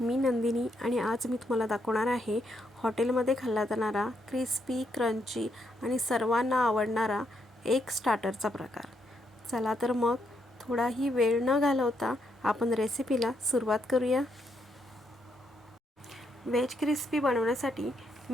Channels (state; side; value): normal; both; correlation 0.77